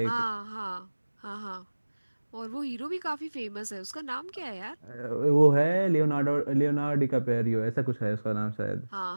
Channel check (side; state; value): both; inverted; correlation -1.00